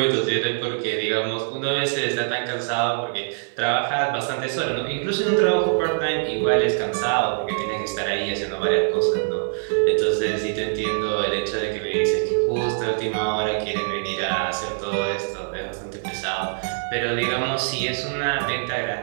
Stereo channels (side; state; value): left; silent; digital silence